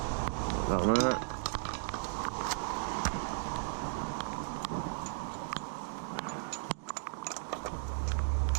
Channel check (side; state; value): left; silent; digital silence